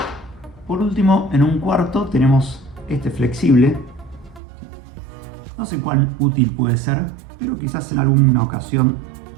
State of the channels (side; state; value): left; drops out; at 4.4 s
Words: Por último, en un cuarto tenemos este flexible. No sé cuán útil puede ser, pero quizás en alguna ocasión